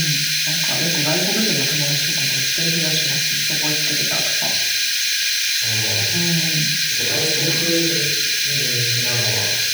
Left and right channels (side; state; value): left; noise; hiss, 3 dB below the sound